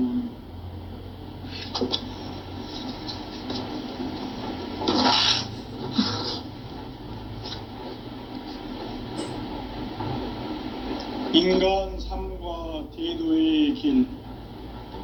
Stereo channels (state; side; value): identical; both; correlation 1.00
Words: 인간 삶과 대도의 길.